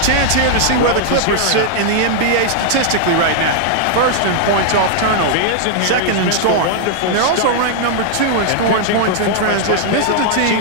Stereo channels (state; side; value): different; both; correlation -0.01